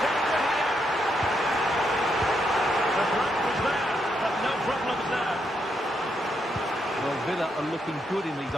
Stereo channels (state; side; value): normal; both; correlation 0.79